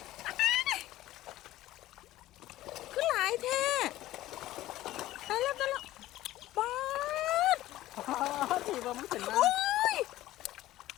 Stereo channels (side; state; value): right; quieter; 15.4 dB